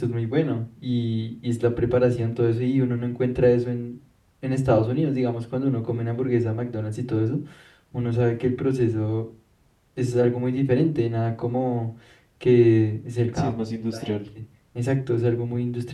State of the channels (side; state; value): both; identical; correlation 1.00